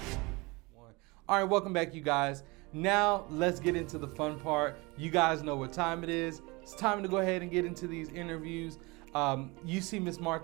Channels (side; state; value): left; quieter; 25.4 dB